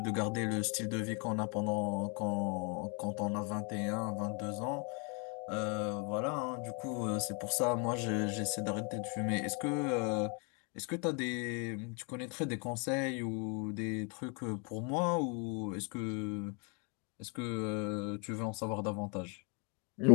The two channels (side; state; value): right; quieter; 35.0 dB